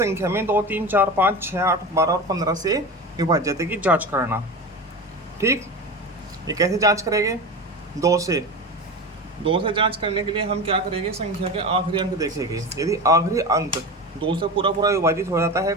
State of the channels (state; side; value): normal; both; correlation 0.27